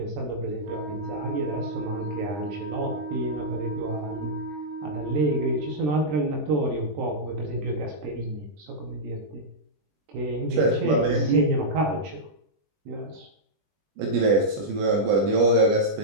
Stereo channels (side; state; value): left; late; 20 ms